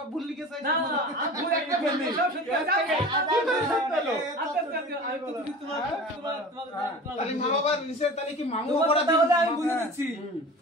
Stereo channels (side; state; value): both; normal; correlation 0.37